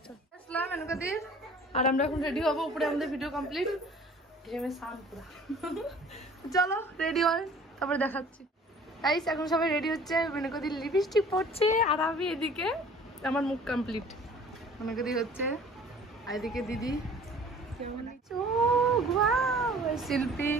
আসলাম এনকাদির, আর আমরা এখন রেডি হবো, উপরে আমাদের ভিডিও কমপ্লিট। চলো রেডি হয়, তারপরে দেখাচ্ছি। গাইস এখন সবাই রেডি হচ্ছে, মেনকাদির লিপস্টিক পড়ছে, আর আমি এদিকে আমার মুখ কমপ্লিট। মেনকাদি হচ্ছে, আর এদিকে দিদি,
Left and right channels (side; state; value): both; normal; correlation 0.49